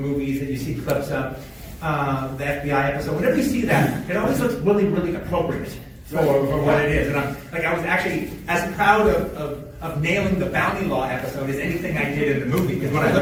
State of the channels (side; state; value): both; identical; correlation 1.00